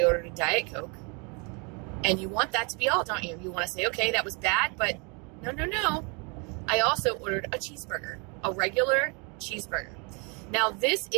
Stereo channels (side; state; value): left; quieter; 33.0 dB